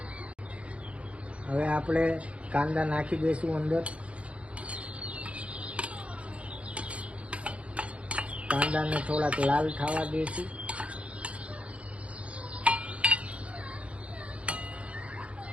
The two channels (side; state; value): left; late; 0.062 ms